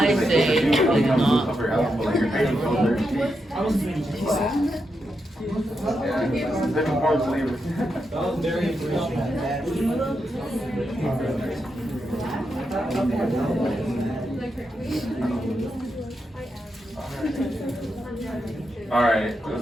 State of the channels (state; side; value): normal; both; correlation 0.85